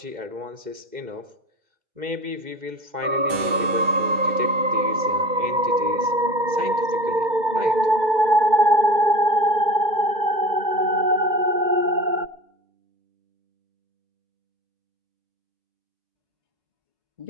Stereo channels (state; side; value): late; left; 2.1 ms